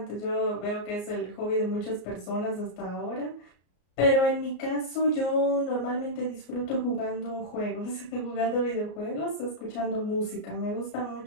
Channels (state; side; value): late; right; 34 ms